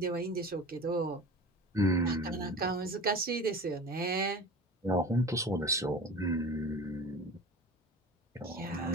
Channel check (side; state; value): both; normal; correlation 0.36